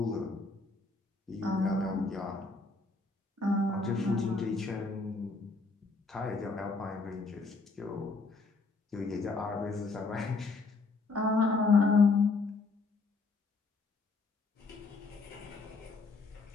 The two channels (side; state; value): right; quieter; 3.8 dB